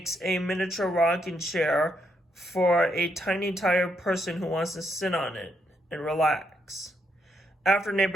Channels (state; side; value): normal; both; correlation 0.77